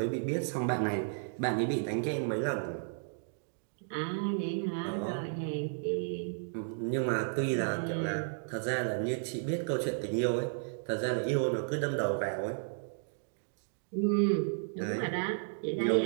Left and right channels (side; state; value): left; silent; digital silence